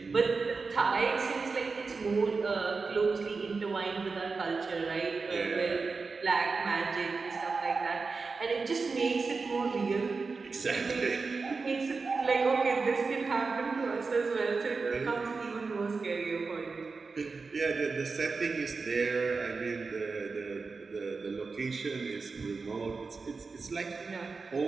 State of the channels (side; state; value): left; quieter; 4.4 dB